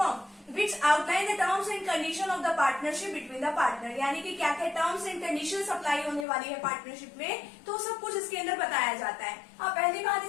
which outline the terms and condition of the partnership between the partner, यानी कि क्या क्या टर्म्स एंड कंडीशंस अप्लाई होने वाली है पार्टनरशिप में, तो सब कुछ इसके अंदर बताया जाता है। अब पहली बात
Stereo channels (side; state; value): right; drops out; at 6.2 s